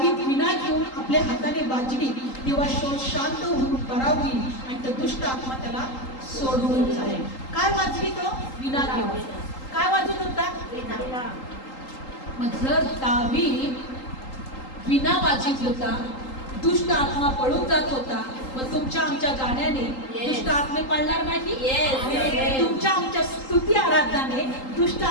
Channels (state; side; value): late; right; 3.8 ms